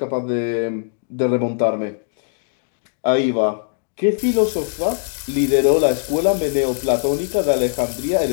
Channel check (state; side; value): silent; right; digital silence